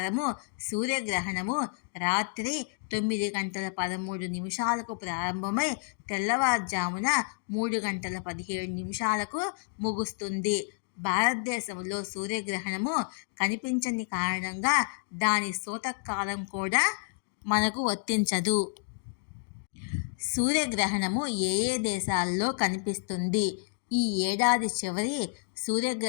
సూర్యగ్రహణము రాత్రి 9:13 ప్రారంభమై తెల్లవారుజామున 3:17 ముగుస్తుంది. భారతదేశంలో సూర్యగ్రహణము కనిపించని కారణంగా దాని సూతకాలం కూడా మనకు వర్తించదు. సూర్యగ్రహణము ఏ ఏ దేశాల్లో కనిపిస్తుంది? ఈ ఏడాది చివరి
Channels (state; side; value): silent; right; 58 dB below the other